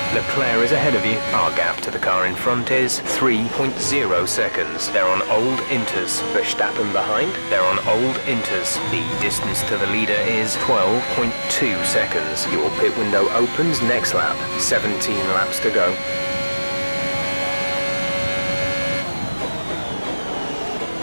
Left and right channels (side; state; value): both; inverted; correlation -1.00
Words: Leclerc is ahead of you. Our gap to the car in front is 3.0 seconds. They're on old inters. Verstappen behind. They're on old inters. The distance to the leader is 12.2 seconds. Your pit window opens next lap. 17 laps to go.